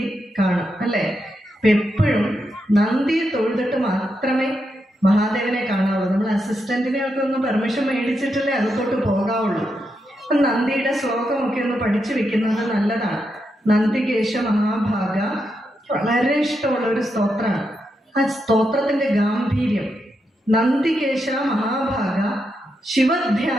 കാണും, അല്ലേ? അപ്പൊ എപ്പോഴും നന്ദിയെ തൊഴുതിട്ട് മാത്രമേ മഹാദേവനെ കാണാവുള്ളൂ. നമ്മൾ അസിസ്റ്റന്റിനെയൊക്കെ ഒന്ന് പെർമിഷൻ മേടിച്ചിട്ടല്ലേ അകത്തോട്ട് പോകാവുള്ളൂ. നന്ദിയുടെ ശ്ലോകമൊക്കെ ഒന്ന് പഠിച്ചു വെക്കുന്നത് നല്ലതാണ്. നന്ദികേശ മഹാഭാഗ വളരെ ഇഷ്ടമുള്ള ഒരു സ്തോത്രമാണ്. ആ സ്തോത്രത്തിന്റെ ഗാംഭീര്യം, നന്ദികേശ മഹാഭാഗ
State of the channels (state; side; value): normal; both; correlation 0.84